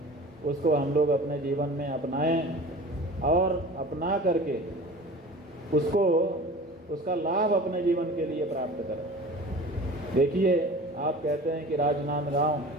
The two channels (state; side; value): normal; both; correlation 0.39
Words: उसको हम लोग अपने जीवन में अपनाएं और अपना करके उसका लाभ अपने जीवन के लिए प्राप्त करें। देखिए, आप कहते हैं कि राजनांदगांव